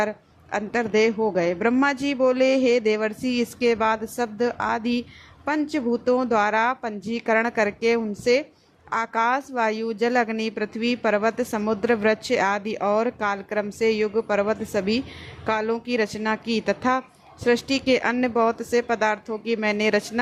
अंतर्देह हो गए। ब्रह्मा जी बोले, हे देवर्षि, इसके बाद शब्द आदि पंचभूतों द्वारा पंजीकरण करके उनसे आकाश, वायु, जल, अग्नि, पृथ्वी, पर्वत, समुद्र, वृक्ष आदि और कालक्रम से युग, पर्वत सभी कालों की रचना की तथा सृष्टि के अन्य बहुत से पदार्थों की मैंने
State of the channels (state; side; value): identical; both; correlation 1.00